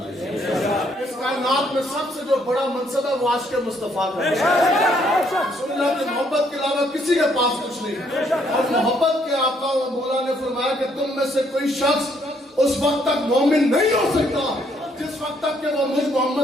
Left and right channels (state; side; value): normal; both; correlation 0.69